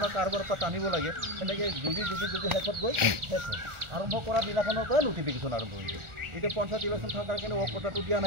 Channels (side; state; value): left; late; 1.4 ms